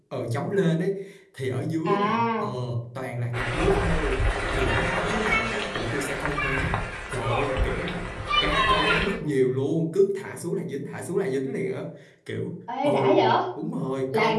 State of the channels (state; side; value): identical; both; correlation 1.00